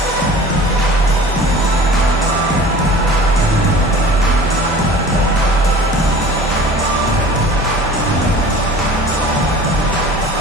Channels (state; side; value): normal; both; correlation 0.43